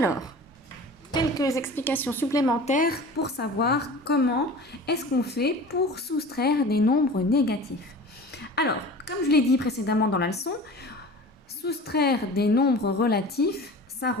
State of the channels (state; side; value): normal; both; correlation 0.38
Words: quelques explications supplémentaires pour savoir comment est-ce qu'on fait pour soustraire des nombres négatifs. Alors, comme je l'ai dit précédemment dans la leçon, soustraire des nombres relatifs, ça